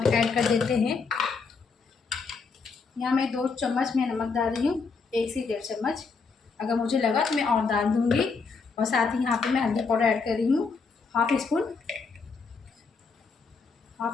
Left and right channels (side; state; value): right; quieter; 4.8 dB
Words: ऐड कर देते हैं। यहाँ मैं 2 चम्मच मैं नमक डाल रही हूँ, 1 से 1.5 चम्मच। अगर मुझे लगा तो मैं और डाल दूँगी। और साथ ही यहाँ पे मैं हल्दी पाउडर ऐड कर रही हूँ, हाफ़ स्पून